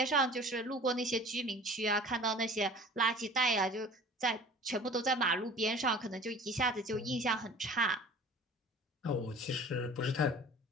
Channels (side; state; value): both; normal; correlation 0.44